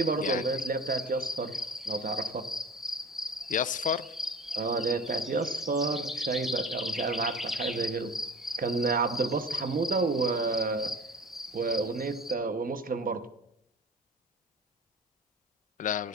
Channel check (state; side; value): normal; both; correlation 0.39